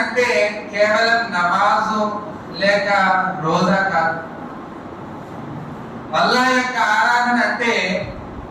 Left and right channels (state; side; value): identical; both; correlation 1.00